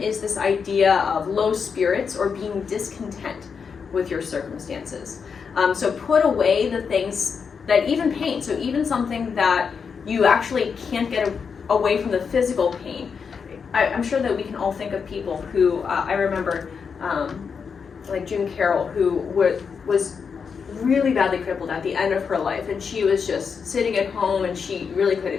this idea of low spirits or being discontent with your circumstances. So put away the things that even pain, so even something that you actually can't get away from the physical pain. I'm sure that we can all think of people who, I remember, like June Carroll, who was really badly crippled at the end of her life, and she was just sitting at home and she really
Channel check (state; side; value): quieter; right; 6.0 dB